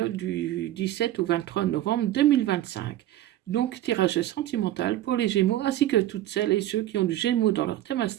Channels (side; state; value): left; quieter; 13.6 dB